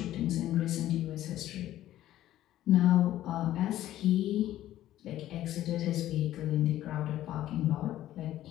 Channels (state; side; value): quieter; right; 13.4 dB